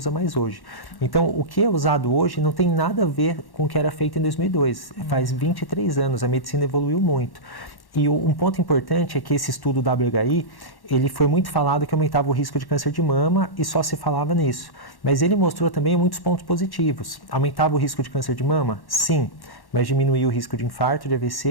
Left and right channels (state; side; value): late; right; 1.1 ms